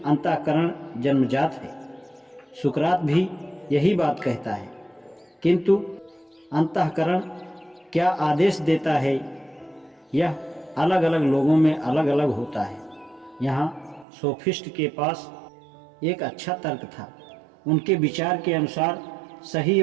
अंतःकरण जन्मजात है। सुकरात भी यही बात कहता है। किंतु अंतःकरण क्या आदेश देता है, यह अलग अलग लोगों में अलग अलग होता है। यहाँ सोफिस्ट के पास एक अच्छा तर्क था। उनके विचार के अनुसार सही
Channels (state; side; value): drops out; left; at 14.1 s